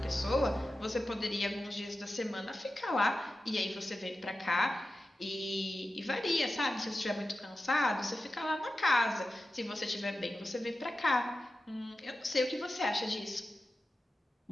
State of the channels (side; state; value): both; normal; correlation 0.93